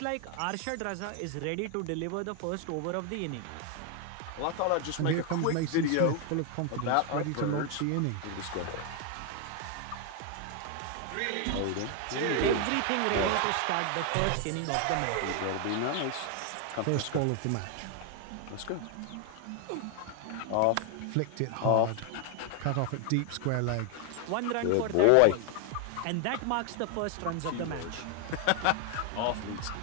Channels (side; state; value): both; different; correlation 0.00